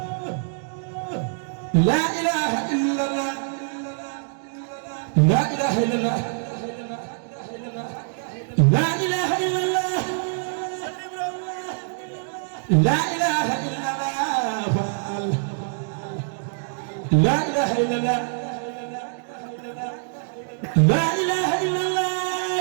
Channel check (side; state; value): left; silent; digital silence